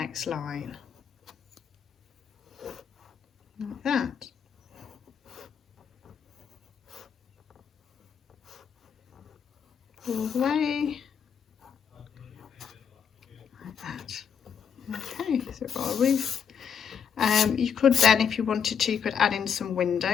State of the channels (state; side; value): quieter; right; 7.3 dB